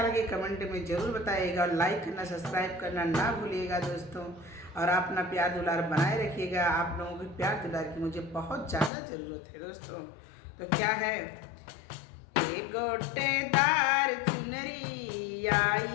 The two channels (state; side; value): drops out; right; at 8.9 s